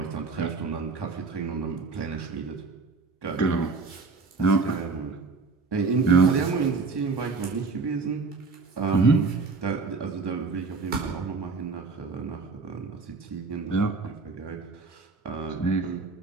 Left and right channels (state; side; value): quieter; left; 4.3 dB